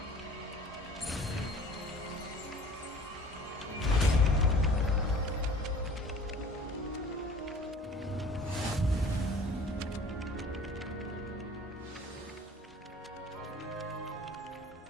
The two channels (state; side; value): normal; both; correlation 0.48